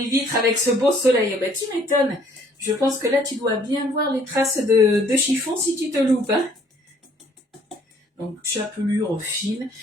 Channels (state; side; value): normal; both; correlation 0.61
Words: vitres avec ce beau soleil. Ben, tu m'étonnes. Je pense que là, tu dois bien voir les traces de chiffon si tu te loupes. Hein. Donc, chapelure fine.